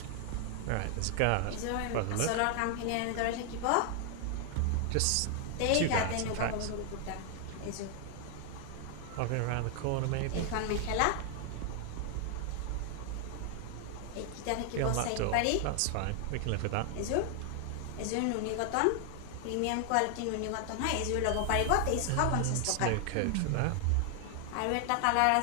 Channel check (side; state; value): both; different; correlation 0.00